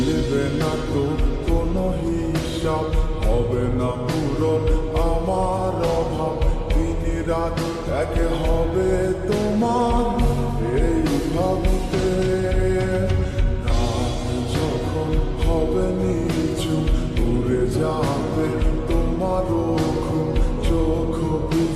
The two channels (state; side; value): identical; both; correlation 1.00